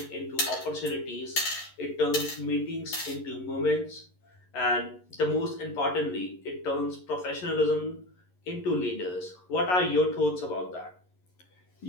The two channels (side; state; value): right; late; 11 ms